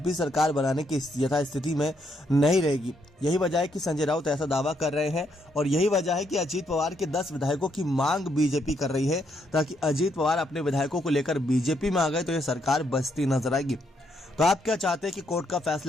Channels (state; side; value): normal; both; correlation 0.75